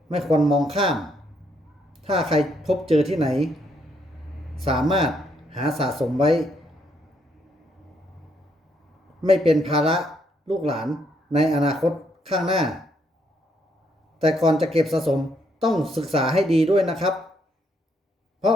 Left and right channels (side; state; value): both; normal; correlation 0.73